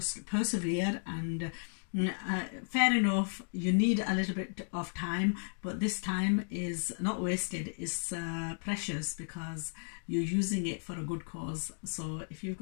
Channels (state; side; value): silent; right; digital silence